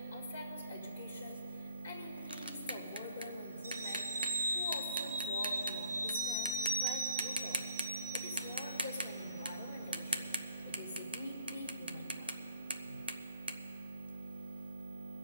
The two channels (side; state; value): both; inverted; correlation -0.64